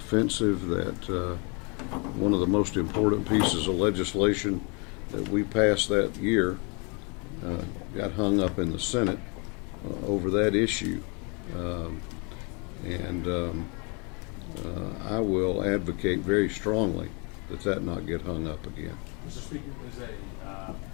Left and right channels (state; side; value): quieter; right; 33.0 dB